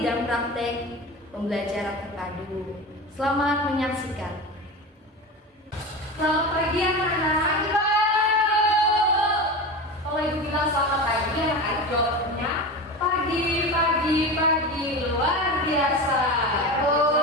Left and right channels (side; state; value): both; normal; correlation 0.27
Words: praktek pembelajaran terpadu. Selamat menyaksikan. Selamat pagi anak-anak. Kalau ibu bilang selamat pagi, anak-anak jawabnya pagi luar biasa.